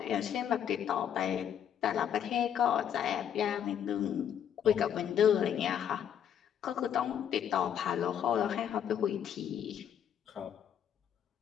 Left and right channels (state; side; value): quieter; right; 9.1 dB